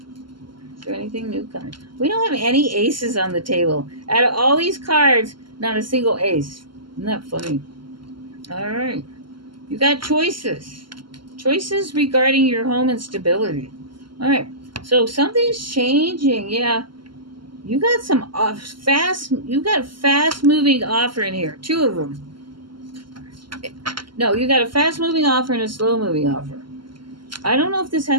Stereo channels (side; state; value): left; late; 0.72 ms